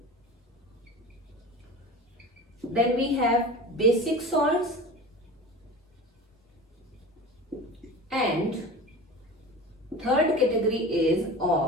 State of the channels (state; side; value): normal; both; correlation 0.34